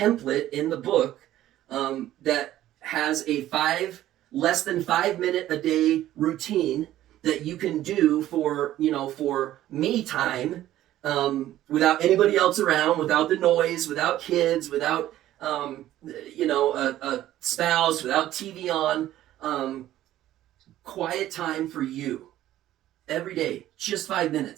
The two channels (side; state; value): left; quieter; 13.6 dB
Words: in the book that has a less than 5 minute a day routine that you can do for me time, without anybody else around, without the noise, without kids, without a spouse, without TV on, quiet time for you every day, just 5